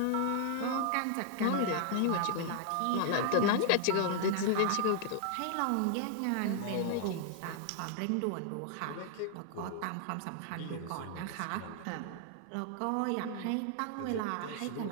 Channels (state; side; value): different; both; correlation -0.01